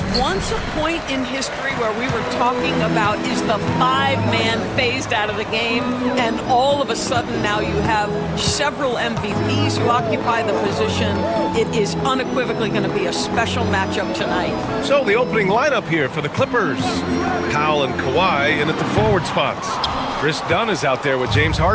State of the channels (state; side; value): identical; both; correlation 1.00